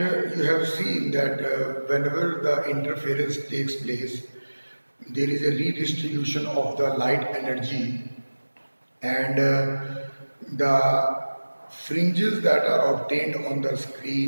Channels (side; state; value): both; inverted; correlation -1.00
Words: you have seen that whenever the interference takes place, there is a redistribution of the light energy, and the fringes that are obtained on the